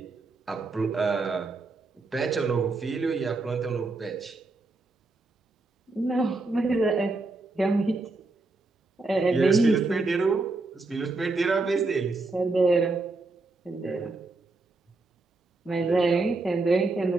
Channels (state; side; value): quieter; left; 3.4 dB